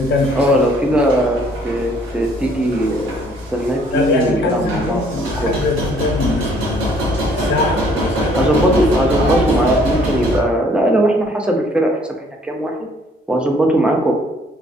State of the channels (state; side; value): normal; both; correlation 0.61